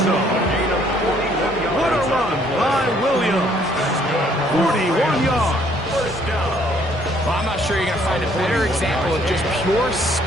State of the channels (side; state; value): both; normal; correlation 0.64